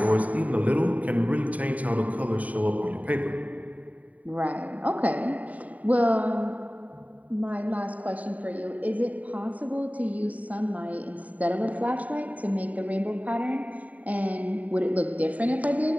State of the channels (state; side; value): late; left; 0.071 ms